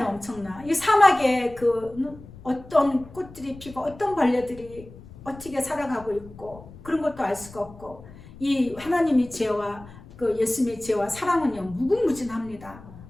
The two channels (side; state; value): left; noise; rumble, 19 dB below the sound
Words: 엄청나. 이 사막에 어떤 꽃들이 피고 어떤 벌레들이 어떻게 살아가고 있고 그런 것도 알 수가 없고, 이 하나님의 지혜와 예수님의 지혜와 사랑은요 무궁무진합니다.